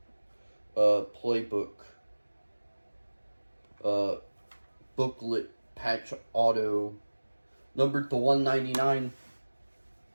playbook booklet patch auto numbered to 199.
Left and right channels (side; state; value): both; inverted; correlation -1.00